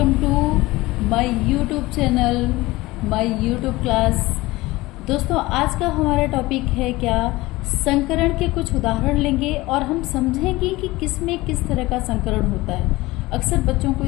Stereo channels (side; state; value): right; quieter; 19.9 dB